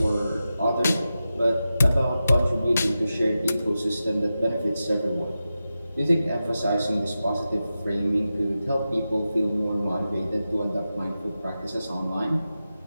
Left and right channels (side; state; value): both; inverted; correlation -0.92